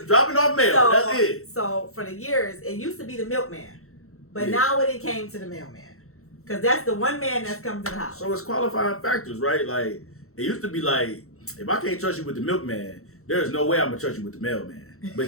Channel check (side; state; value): right; late; 0.63 ms